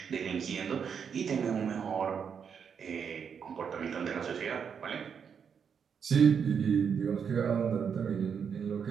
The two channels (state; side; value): quieter; left; 7.0 dB